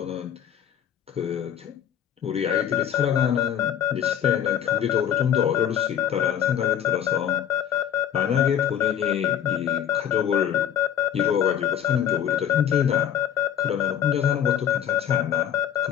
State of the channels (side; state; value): right; quieter; 9.6 dB